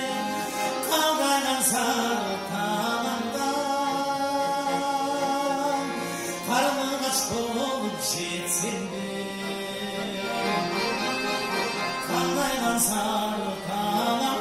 kavgadan sarı talandan, karnı kaç olup gitsen de, kavgadan sarı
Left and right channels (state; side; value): identical; both; correlation 1.00